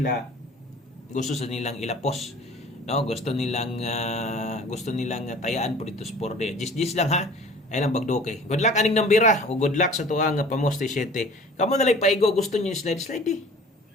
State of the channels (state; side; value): normal; both; correlation 0.46